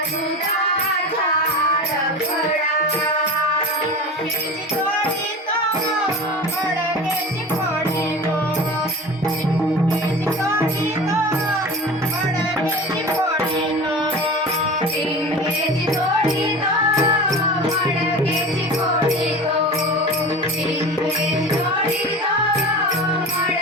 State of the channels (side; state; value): both; normal; correlation 0.33